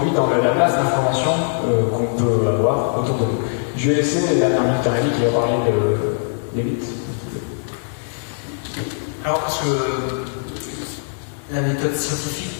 dans la masse d'informations qu'on peut avoir autour de nous. Je vais laisser la dernière minute à Rémi qui va parler des mythes. Alors, parce que la méthode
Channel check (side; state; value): right; silent; 65 dB below the other